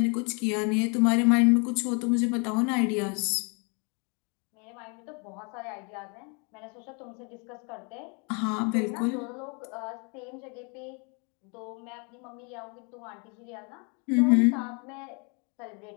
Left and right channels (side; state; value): right; quieter; 34.1 dB